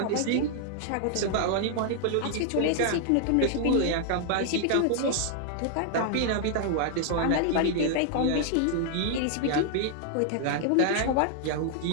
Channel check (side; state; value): both; different; correlation 0.00